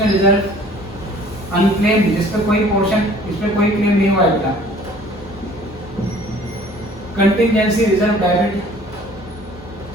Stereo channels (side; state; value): both; normal; correlation 0.52